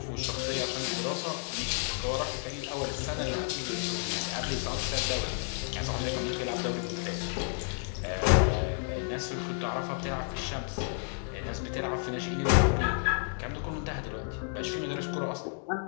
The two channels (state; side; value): silent; right; 57 dB below the other